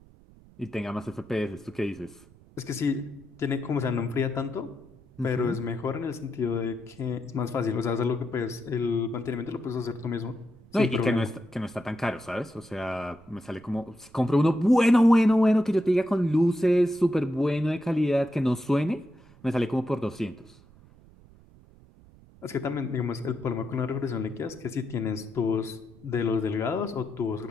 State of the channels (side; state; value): right; noise; rumble, 25 dB below the sound